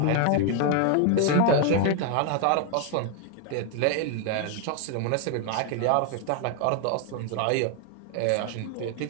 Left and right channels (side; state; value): both; different; correlation 0.01